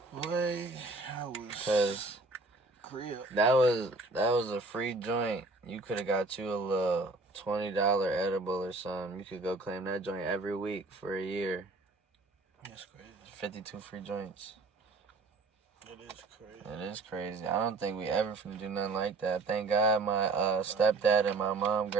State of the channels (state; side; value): quieter; left; 3.3 dB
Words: Boy, I was... Because that was a free joint. You could have got you a little $20 edible or something. You could go claim that joint every week for a year. That's crazy. 52 free joints. It is crazy. It is crazy. I don't think we ever finna do nothing like that. Thank God my stepdad and my mom